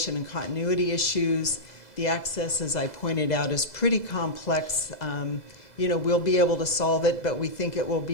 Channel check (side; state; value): right; late; 2.0 ms